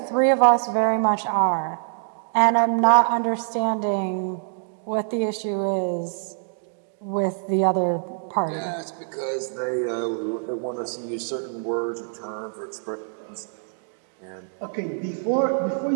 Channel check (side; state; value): left; silent; digital silence